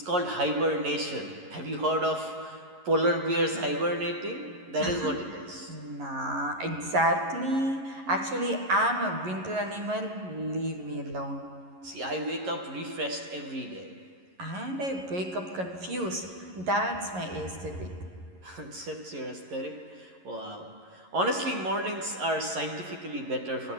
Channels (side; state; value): left; late; 11 ms